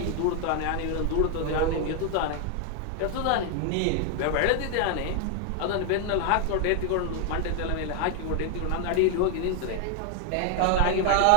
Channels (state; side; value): different; both; correlation 0.00